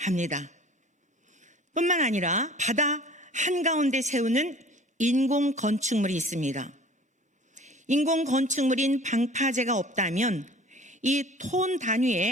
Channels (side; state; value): both; normal; correlation 0.47